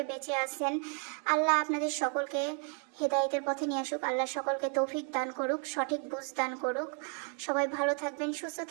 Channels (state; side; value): quieter; left; 39.3 dB